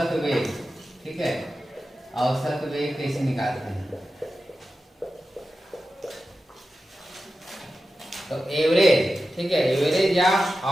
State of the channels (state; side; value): normal; both; correlation 0.92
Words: वेग, ठीक है, औसत वेग कैसे निकालते हैं। तो एवरेज, ठीक है, एवरेज या